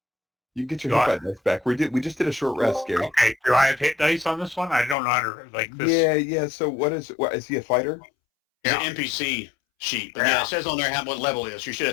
You get your Do hit dice back. We just did a short rest, Gary. Okay, do I have hit dice on this one? I don't know how to like this. Yeah. So what is he a fighter? It's Yeah. an NPC sheet, but yeah, Yeah. it says on there what level it is. You should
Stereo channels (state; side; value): drops out; right; at 5.0 s